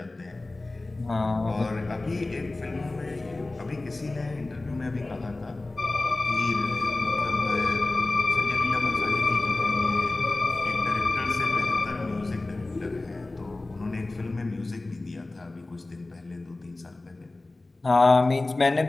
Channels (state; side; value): quieter; right; 3.0 dB